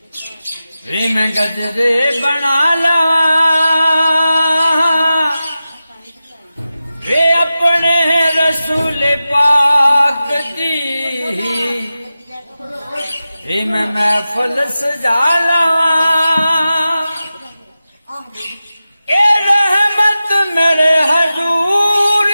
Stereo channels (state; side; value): inverted; both; correlation -0.93